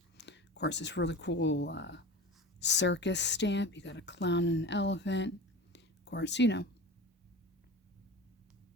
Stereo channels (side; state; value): both; normal; correlation 0.32